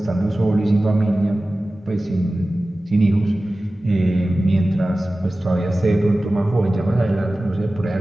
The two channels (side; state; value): both; normal; correlation 0.96